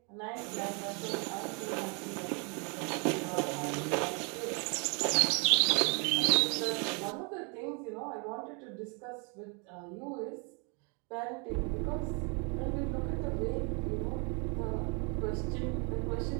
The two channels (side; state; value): left; quieter; 34.4 dB